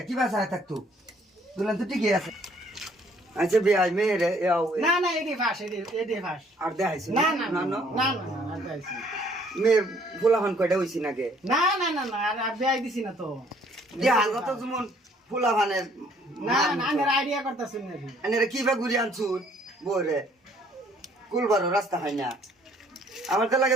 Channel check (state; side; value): normal; both; correlation 0.61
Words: কি বাসায় থাকতো দুলান তো ঠিকই আছে আচ্ছা ভাই মেয়ে রে না না এডি ফাস এডি ফাস আর দেখাইছি না না না না না না দেখাইছি মেয়ে ফুলাফান কয়টা হইছি নাকি না না না না আর দেখাই দিছি না তো দেহাল তো যেমন ফুলাফানের না না আমি আইডিয়া করতেছি না আনে কি বা ঘুরি আনছুন বরে কুলবারো রাস্তা হয় না আমার তো